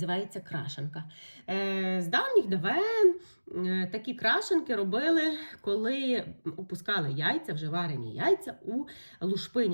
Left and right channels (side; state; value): both; inverted; correlation -1.00